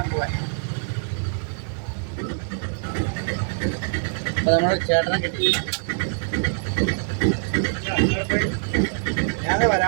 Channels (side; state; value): left; silent; digital silence